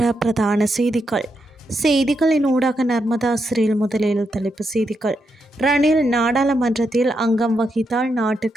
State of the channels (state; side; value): normal; both; correlation 0.83